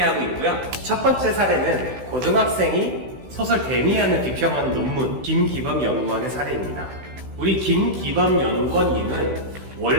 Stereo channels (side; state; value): left; late; 16 ms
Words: 있고요. 첫 번째 사례는 고등학생이 소설 데미안을 비평하는 논문 김기범 연구원의 사례입니다. 우리 김기범 연구원님은